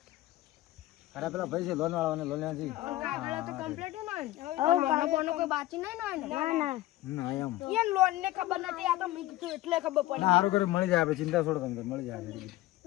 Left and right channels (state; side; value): quieter; right; 16.3 dB